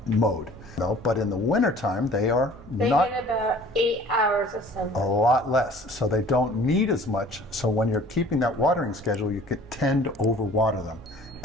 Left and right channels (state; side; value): normal; both; correlation 0.50